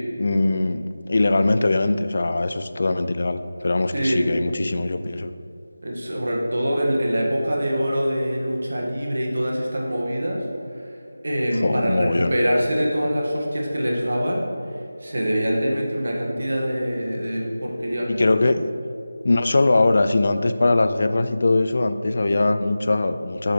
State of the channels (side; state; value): both; inverted; correlation -0.96